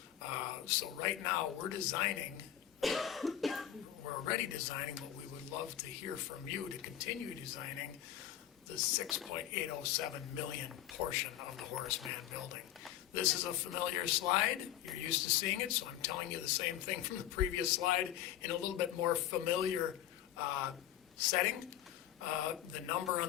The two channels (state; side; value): quieter; right; 11.7 dB